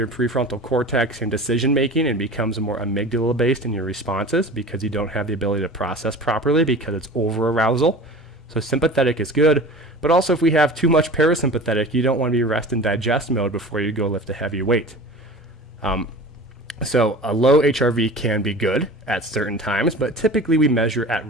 prefrontal cortex and decision making, and becomes more amygdala based in your responses because you don't have the ability to process properly because it's over arousal. So sympathetic is good, but also if we have too much parasympathetic, you don't want to be rest and digest mode before you go lift a heavy weight. So a low HRV can be good at certain times, but typically we measure at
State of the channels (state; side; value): normal; both; correlation 0.38